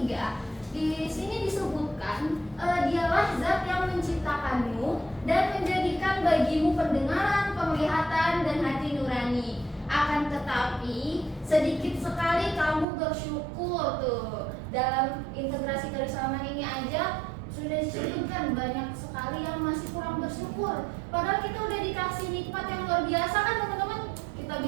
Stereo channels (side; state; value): left; drops out; at 12.9 s